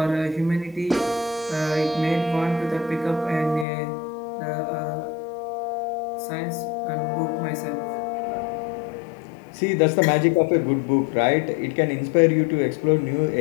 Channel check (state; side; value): drops out; right; at 3.7 s